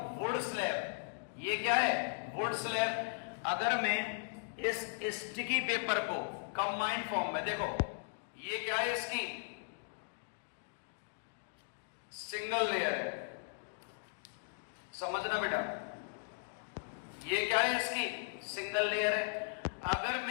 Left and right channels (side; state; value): right; silent; digital silence